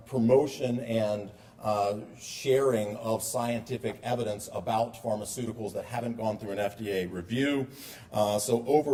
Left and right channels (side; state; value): both; identical; correlation 1.00